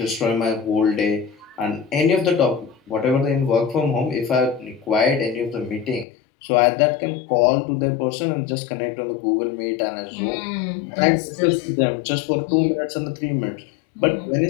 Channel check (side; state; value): right; drops out; at 6.1 s